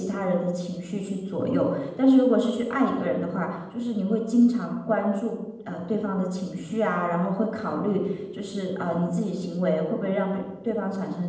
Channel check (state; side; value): identical; both; correlation 1.00